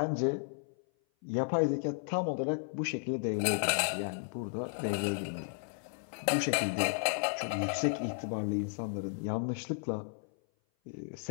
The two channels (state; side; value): silent; right; 55 dB below the other